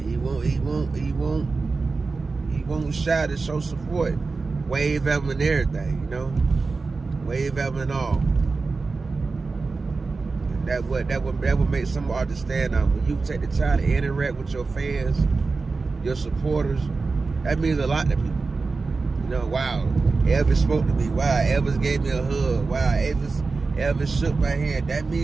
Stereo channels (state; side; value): quieter; left; 4.1 dB